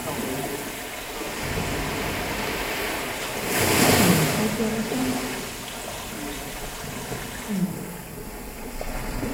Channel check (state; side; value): identical; both; correlation 1.00